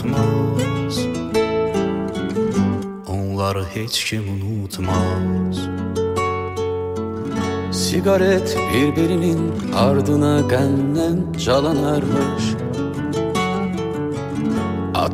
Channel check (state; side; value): identical; both; correlation 1.00